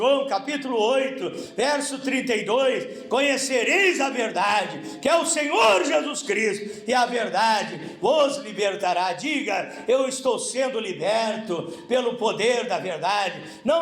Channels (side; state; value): both; identical; correlation 1.00